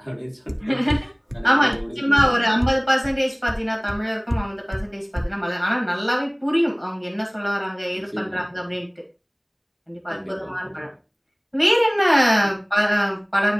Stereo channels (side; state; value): both; identical; correlation 1.00